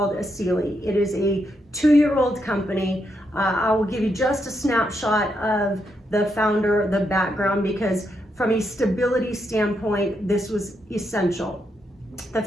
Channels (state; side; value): normal; both; correlation 0.80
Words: Asili. It is a 2-year-old company. I will give you just a snapshot of the founder, the background, because from a stability standpoint, this was essential. The